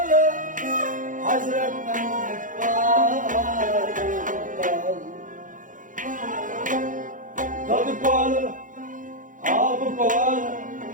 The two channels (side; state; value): left; late; 0.38 ms